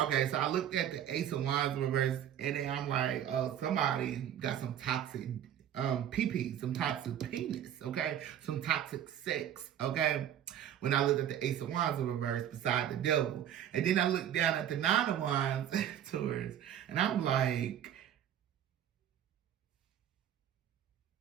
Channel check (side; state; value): left; quieter; 10.4 dB